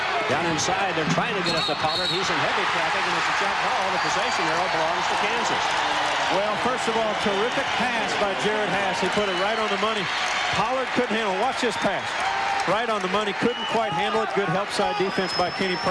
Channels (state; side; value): identical; both; correlation 1.00